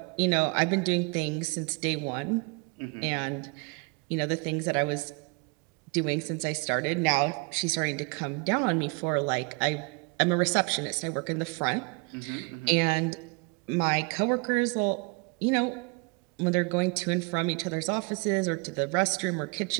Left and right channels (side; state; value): left; quieter; 31.6 dB